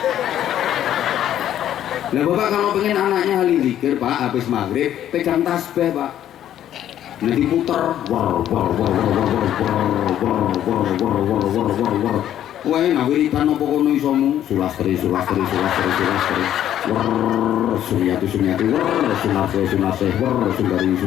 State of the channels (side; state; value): right; quieter; 11.2 dB